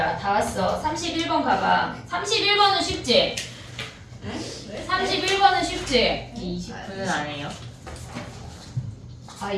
다 왔어. 31번 가봐. 31번은 쉽지? 31번은 쉽지? 29는 안 해요. 아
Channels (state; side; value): identical; both; correlation 1.00